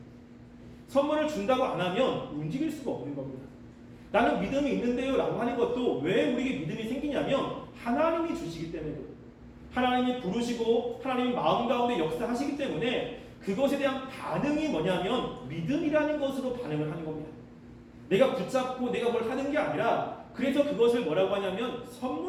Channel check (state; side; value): identical; both; correlation 1.00